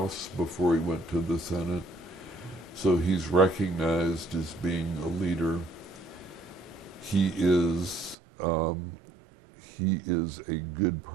before he went to the Senate. So he's recognized as being a leader. He is a good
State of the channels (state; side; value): drops out; left; at 8.2 s